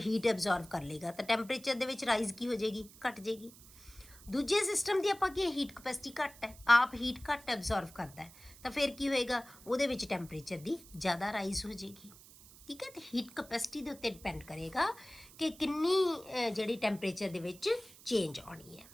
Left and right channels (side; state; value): right; noise; hiss, 21 dB below the sound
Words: ਐਬਜ਼ੌਰਬ ਕਰ ਲੇਗਾ, ਤਾਂ ਟੈਂਪਰੇਚਰ ਦੇ ਵਿੱਚ ਰਾਈਜ਼ ਕੀ ਹੋ ਜਾਏਗੀ, ਘਟ ਜਾਏਗੀ। ਦੂਜੇ ਸਿਸਟਮ ਦੀ ਆਪਾਂ ਕੀ ਹੀਟ ਕਪੈਸਿਟੀ ਘੱਟ ਹੈ, ਆਪ ਹੀਟ ਘੱਟ ਐਬਜ਼ੌਰਬ ਕਰਦਾ ਹੈ, ਤਾਂ ਫਿਰ ਕੀ ਹੋਏਗਾ, ਉਹਦੇ ਵਿੱਚ ਟੈਂਪਰੇਚਰ ਦੀ ਜ਼ਿਆਦਾ ਰਾਈਜ਼ ਹੋ ਜਾਏਗੀ। ਠੀਕ ਹੈ, ਤੇ ਹੀਟ ਕਪੈਸਿਟੀ ਦੇ ਉੱਤੇ ਡਿਪੈਂਡ ਕਰੇਗਾ ਕਿ ਕਿੰਨੀ ਜਿਹੜੀ ਟੈਂਪਰੇਚਰ ਦੇ ਵਿੱਚ ਚੇਂਜ ਆਉਣੀ ਹੈ।